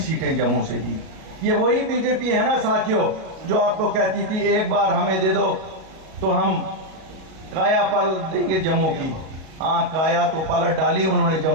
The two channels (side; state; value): left; late; 37 ms